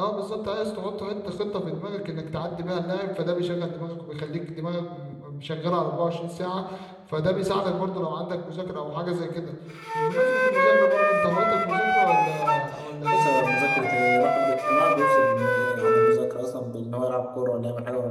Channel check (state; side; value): identical; both; correlation 1.00